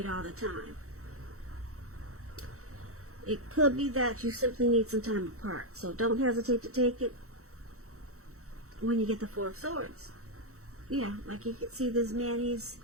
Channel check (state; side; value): late; left; 0.64 ms